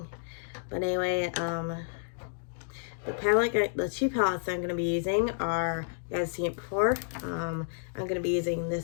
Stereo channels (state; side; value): silent; right; digital silence